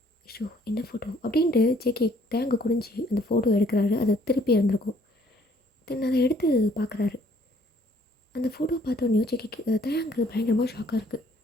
ஐயோ என்ன ஃபோட்டோ அப்படின்ட்டு ஜேகே தேங்க குனிஞ்சு அந்த ஃபோட்டோ எடுக்கிறாரு. அதை திருப்பி இருந்திருக்கும். தென் அதை எடுத்து பார்க்குறாரு. அந்த ஃபோட்டோ பார்த்தோன்னே ஜேகேக்கு தேங்கு பயங்கரமாக ஷாக்காக இருக்குது.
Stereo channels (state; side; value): normal; both; correlation 0.62